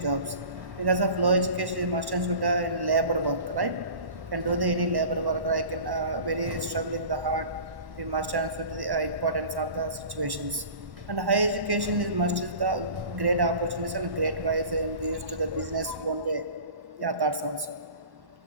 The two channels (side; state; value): left; late; 1.1 ms